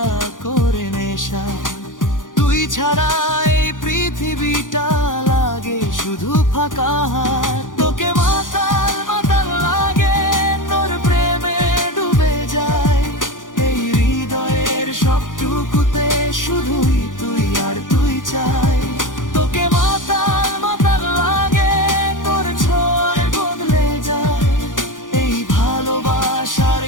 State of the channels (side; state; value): right; late; 0.88 ms